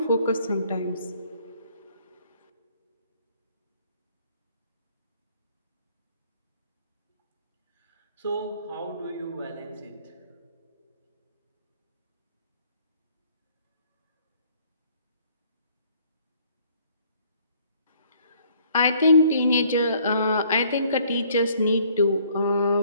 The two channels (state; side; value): inverted; both; correlation -0.61